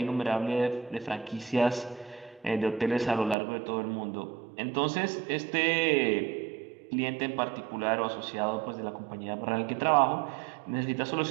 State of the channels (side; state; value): left; drops out; at 3.4 s